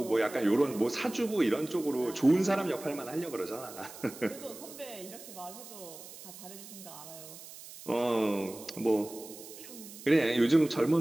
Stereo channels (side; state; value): right; noise; hiss, 15 dB below the sound